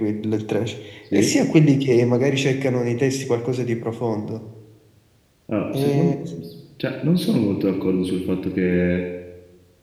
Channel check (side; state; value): both; identical; correlation 1.00